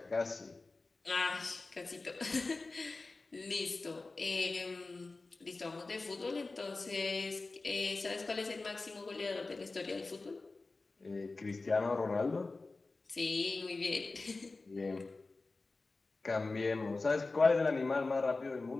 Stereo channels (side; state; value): right; quieter; 3.5 dB